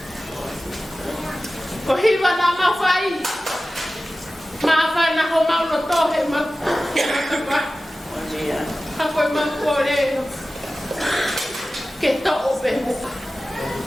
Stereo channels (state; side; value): normal; both; correlation 0.95